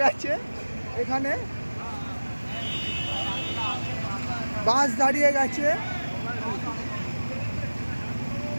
গেছে, এখানে বাস দাঁড়িয়ে গেছে,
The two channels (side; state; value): both; inverted; correlation -1.00